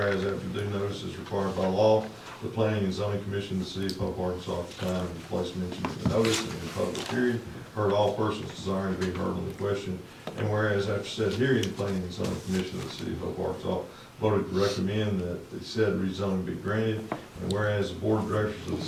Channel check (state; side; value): identical; both; correlation 1.00